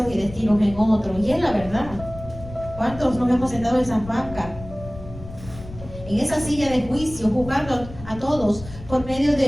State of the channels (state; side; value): noise; left; rumble, 14 dB below the sound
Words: y destinos en otros. Y es la verdad. ¿Cuántos nos hemos sentado en esas bancas, en esa silla de juicio, juzgando a todos por medio